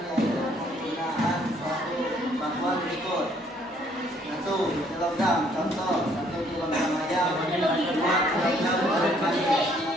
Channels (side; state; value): both; normal; correlation 0.64